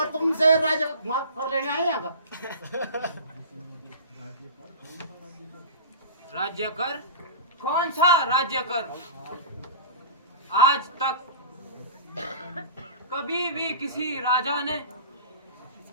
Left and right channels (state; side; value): inverted; both; correlation -0.36